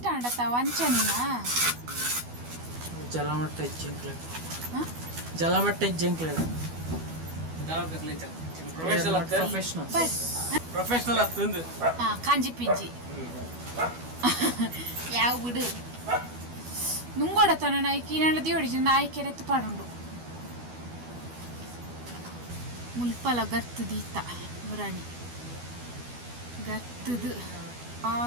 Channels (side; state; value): left; late; 12 ms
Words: ಆಂಡತ್ತ ವಂಚನಿನ ಜಲಮಟ್ಟ ಇಜ್ಜಂಕ್ಲೆ ಜಲಮಟ್ಟ ಇಜ್ಜಂಕ್ಲೆ ಪ್ರೊಫೆಷನಲ್ ಅತ್ತಂದು ಕಾಂಜಿ ಪಿಂಜಿ ಯಾವ ಬಿಡು ನುಂಗೋಡತನ ನಾಯ್ಕಿ ನಡದಿ ಹೊಡಿಜಿ ನಾಯ್ಕೆರೆತ್ತು ಪಾಡುಂಡು ಮುಲ್ಪಲ ಗರ್ತು ದೀತ ಮುರಾಣಿ ಗರ್ತದು